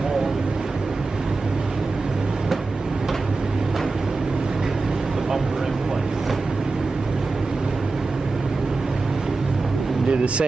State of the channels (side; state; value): left; quieter; 3.7 dB